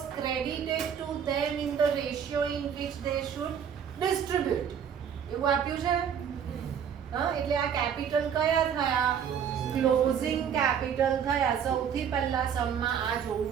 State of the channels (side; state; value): left; quieter; 8.0 dB